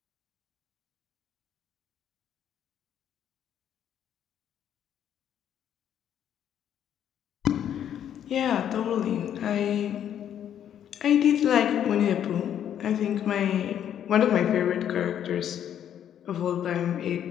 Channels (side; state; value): right; quieter; 9.8 dB